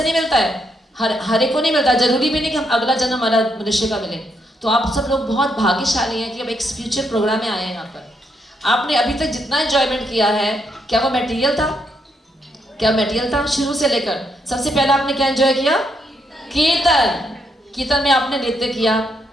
नहीं मिलता है, हर एक को नहीं मिलता। जरूरी भी नहीं कि हम अगला जन्म हमारा मनुष्य का मिले। तो आप सब लोग बहुत भाग्यशाली हैं कि अब एक स्पिरिचुअल प्रोग्राम में आए हैं यहाँ पर। आपने अभी तक जितना एंजॉयमेंट किया है, क्या वो मटेरियल था? क्या मटेरियल था? शुरू से लेकर सबसे पहले आपने क्या एंजॉय किया? कीर्तन। कीर्तन में आपने नृत्य किया,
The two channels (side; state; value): both; normal; correlation 0.77